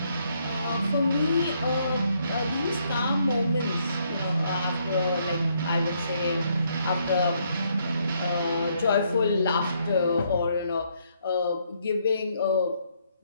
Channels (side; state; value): both; inverted; correlation -0.72